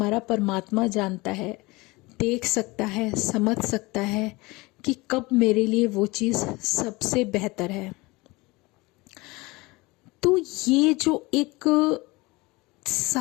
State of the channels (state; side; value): quieter; right; 23.1 dB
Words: परमात्मा जानता है, देख सकता है, समझ सकता है कि कब मेरे लिए वो चीज़ सबसे बेहतर है। तो ये जो एक